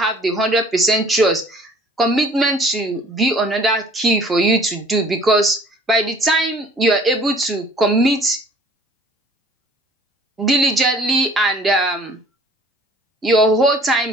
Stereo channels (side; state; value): both; normal; correlation 0.52